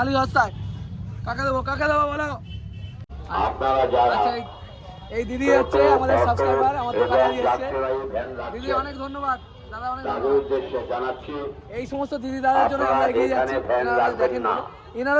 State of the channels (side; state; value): both; identical; correlation 1.00